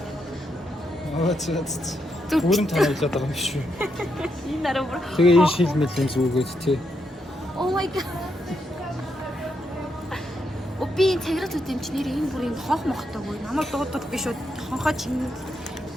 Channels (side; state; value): both; normal; correlation 0.81